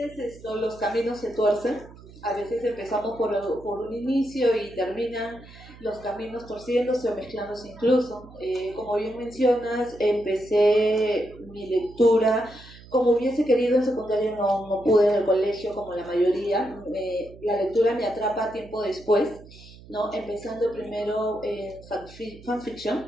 los caminos se tuercen, a veces empezamos por un inicio y terminan los caminos torciéndose o mezclándose incluso. Como bien mencionas, empecé mi lectura como hubiese querido en secundaria, no pude en el colegio como la mayoría. La lectura me atrapa tiempo después, ¿no? Empezando primero en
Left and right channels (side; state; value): right; noise; hum, 20 dB below the sound